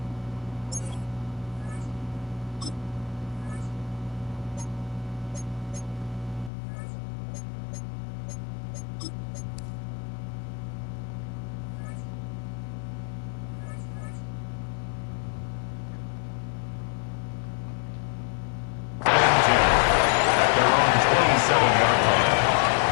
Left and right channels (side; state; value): right; drops out; at 6.5 s